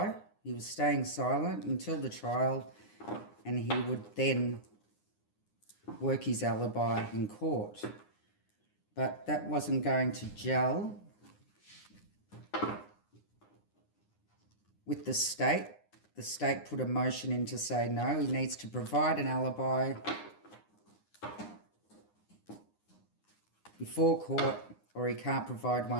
He was staying silent until the trial, and he would then work his alibi in court. But that wasn't going to gel with the state. The state put a motion in to say no, he needs to provide an alibi before court or he can't provide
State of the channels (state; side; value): late; right; 9.8 ms